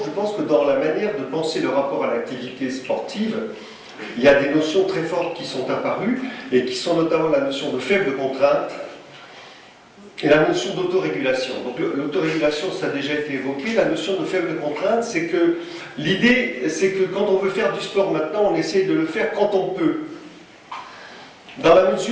je pense que dans la manière de penser le rapport à l'activité sportive, il y a des notions très fortes qui sont apparues, et qui sont notamment la notion de faible contrainte, et la notion d'autorégulation. Donc l'autorégulation, ça a déjà été évoqué, la notion de faible contrainte, c'est que l'idée, c'est que quand on veut faire du sport maintenant, on essaie de le faire quand on peut. Dans la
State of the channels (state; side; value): identical; both; correlation 1.00